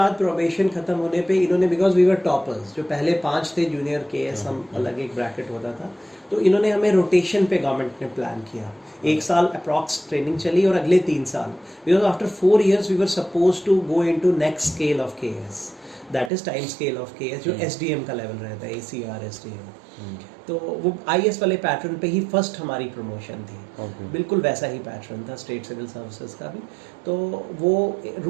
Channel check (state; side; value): drops out; left; at 16.3 s